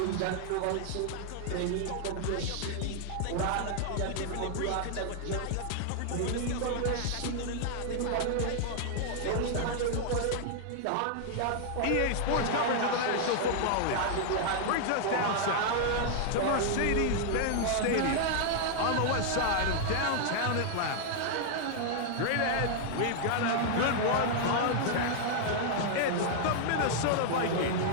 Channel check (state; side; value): different; both; correlation 0.00